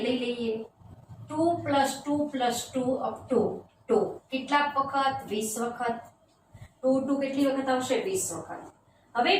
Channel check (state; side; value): identical; both; correlation 1.00